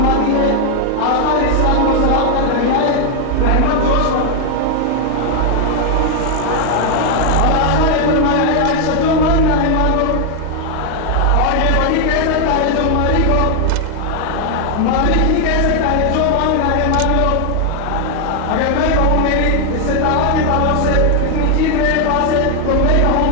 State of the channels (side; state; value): both; different; correlation 0.00